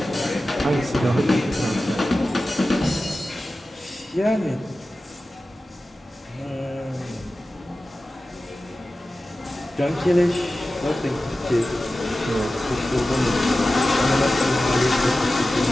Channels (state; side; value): normal; both; correlation 0.95